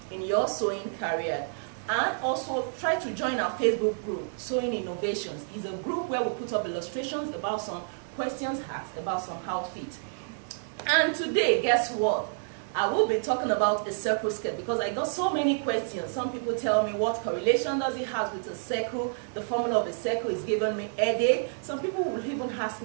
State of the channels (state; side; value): silent; left; digital silence